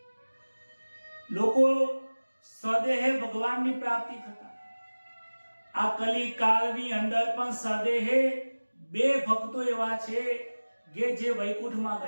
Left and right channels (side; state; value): both; inverted; correlation -1.00